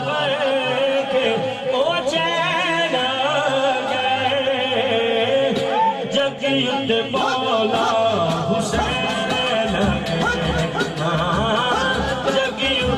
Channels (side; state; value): both; identical; correlation 1.00